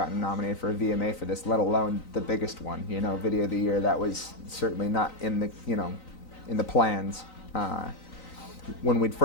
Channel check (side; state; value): right; late; 3.9 ms